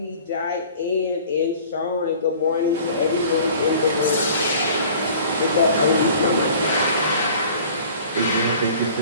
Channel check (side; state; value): both; inverted; correlation -0.47